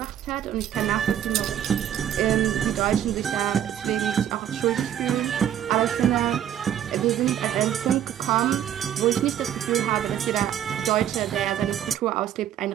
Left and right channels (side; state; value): left; quieter; 10.5 dB